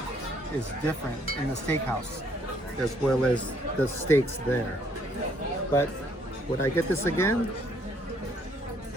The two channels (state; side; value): normal; both; correlation 0.67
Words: is different in the steakhouse, as well as the steaks there. But would I get this again?